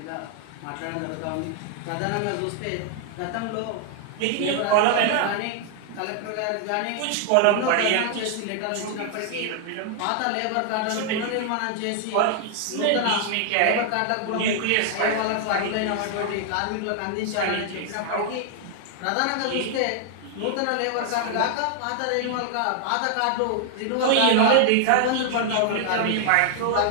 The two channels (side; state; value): both; different; correlation 0.00